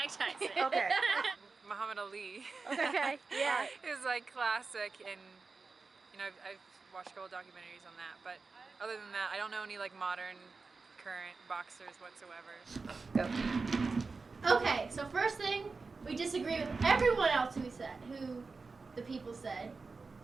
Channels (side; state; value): left; quieter; 4.2 dB